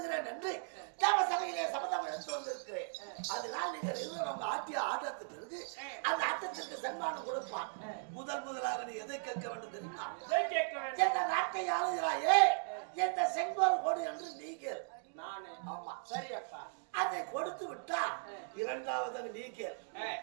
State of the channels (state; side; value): silent; left; digital silence